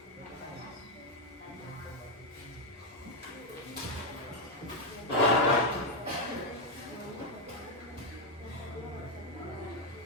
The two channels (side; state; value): both; normal; correlation 0.03